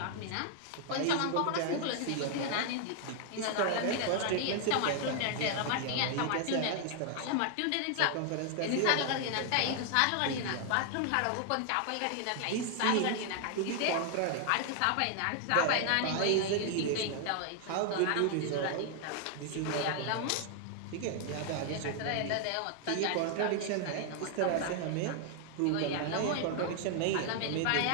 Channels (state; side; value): different; both; correlation 0.00